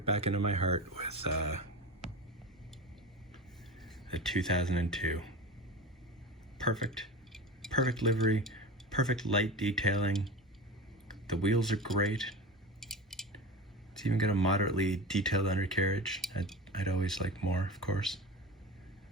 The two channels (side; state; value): both; normal; correlation 0.29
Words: back into my heart with a 2002. Perfect livery, perfect light detailing. The wheels are great. It's even got a moderately detailed undercarriage. I'd always like more, of course.